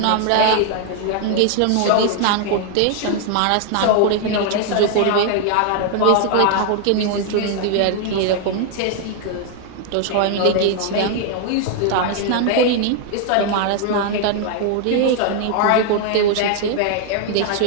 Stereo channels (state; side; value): different; both; correlation 0.00